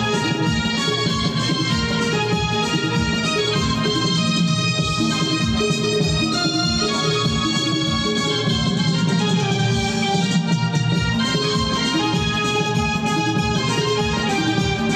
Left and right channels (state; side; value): identical; both; correlation 1.00